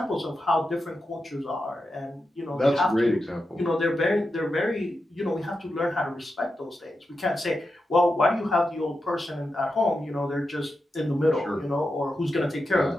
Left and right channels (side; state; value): both; normal; correlation 0.89